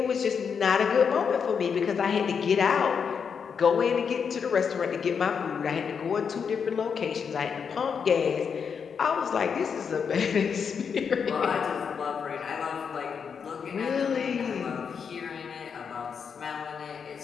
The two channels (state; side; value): quieter; right; 6.5 dB